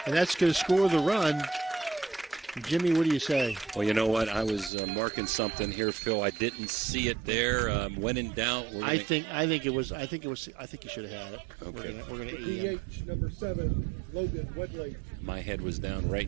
that's going to score the run. Jimmy, what do you say? Well, you know what? I was marking something here, Phil. I didn't see it there. When in doubt, I think you should have had it. Okay. We're going to DH number 7, Logan Wedlake. My head was down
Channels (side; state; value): left; drops out; at 4.7 s